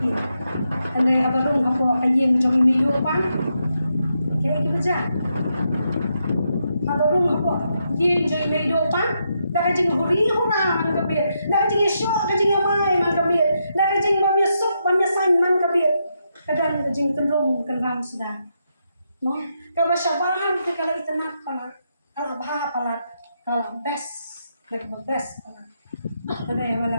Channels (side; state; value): both; inverted; correlation -0.82